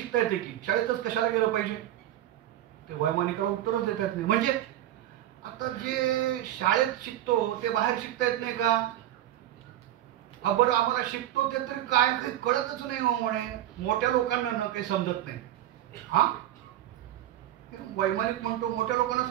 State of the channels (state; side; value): quieter; left; 12.9 dB